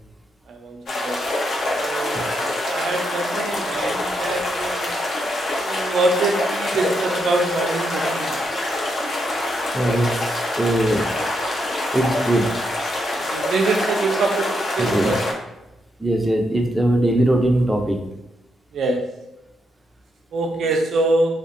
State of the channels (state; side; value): normal; both; correlation 0.80